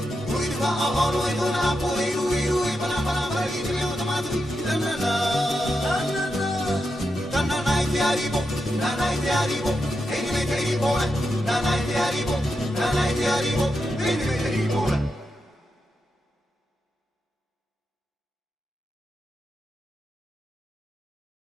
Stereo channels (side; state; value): both; normal; correlation 0.86